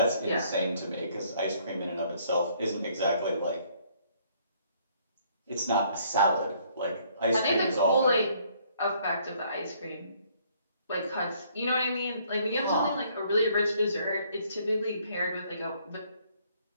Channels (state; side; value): inverted; both; correlation -0.64